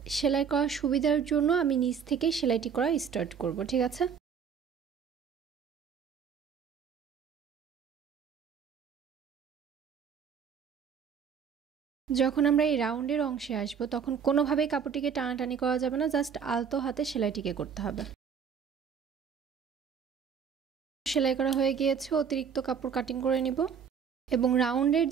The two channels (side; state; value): left; quieter; 7.0 dB